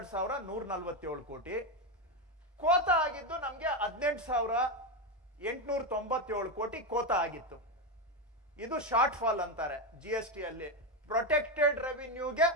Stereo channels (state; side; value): normal; both; correlation 0.10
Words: ಕೋಟಿ. ಕೋತ ಆಗಿದ್ದು ನಮ್ಗೆ 18,897 ಕೋಟಿ ಕೋತ ಆಗಿತ್ತು. ಇದು ಶಾರ್ಟ್ ಫಾಲ್ ಅಂತಾರೆ GST ಅಲ್ಲಿ. ಪ್ರೊಟೆಕ್ಟೆಡ್ ರೆವಿನ್ಯೂಗೆ